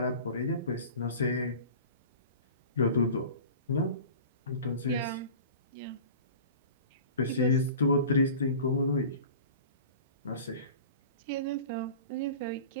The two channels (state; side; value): inverted; both; correlation -0.39